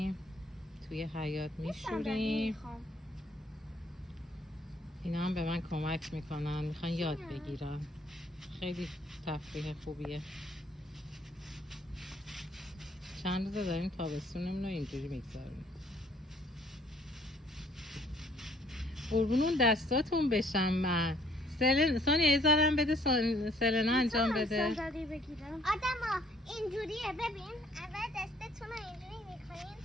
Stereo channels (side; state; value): both; normal; correlation 0.62